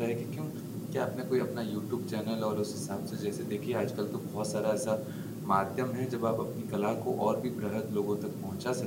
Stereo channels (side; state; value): both; identical; correlation 1.00